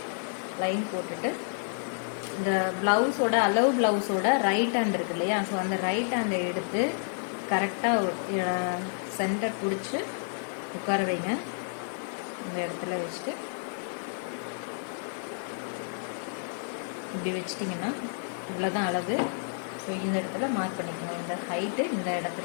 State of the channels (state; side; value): silent; right; 58 dB below the other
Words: லைன் போட்டுட்டு இந்த ப்ளவுஸோட ப்ளவுஸோட ரைட் ஹேண்ட் இருக்கு இல்லையா, ஸோ அந்த ரைட் ஹேண்டை எடுத்து கரெக்டாக சென்டர் பிடிச்சி உட்கார வைங்க. இந்த இடத்துல வச்சுட்டு இப்படி வச்சிட்டிங்கன்னா இவ்வளோதான் அளவு. ஸோ இந்த இடத்துல மார்க் பண்ணிக்கோங்க. இந்த ஹைட்டு இந்த